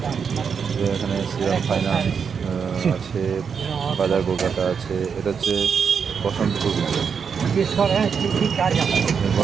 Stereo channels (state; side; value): quieter; left; 6.5 dB